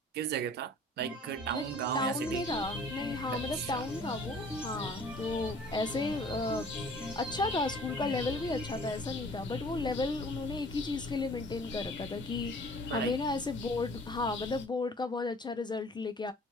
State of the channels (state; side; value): normal; both; correlation 0.51